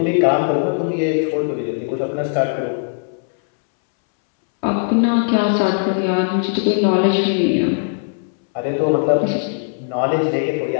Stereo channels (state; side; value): silent; right; 65 dB below the other